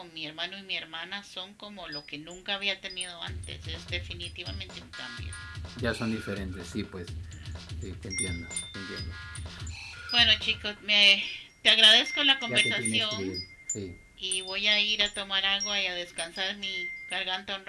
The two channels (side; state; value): both; identical; correlation 1.00